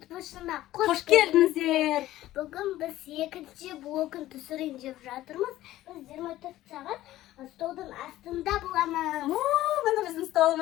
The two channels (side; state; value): right; quieter; 15.0 dB